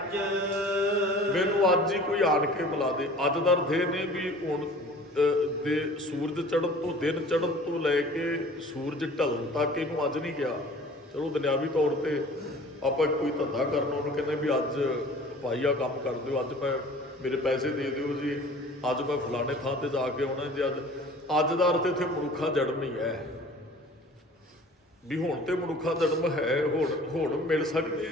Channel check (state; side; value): normal; both; correlation 0.46